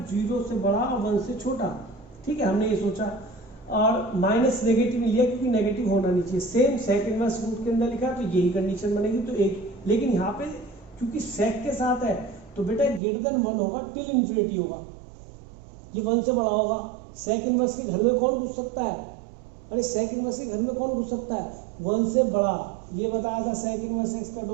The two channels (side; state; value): left; drops out; at 13.0 s